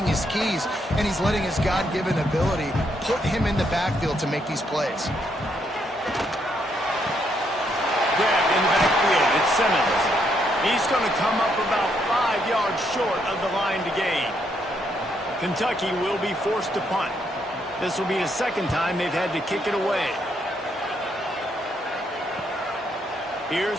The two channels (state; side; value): normal; both; correlation 0.75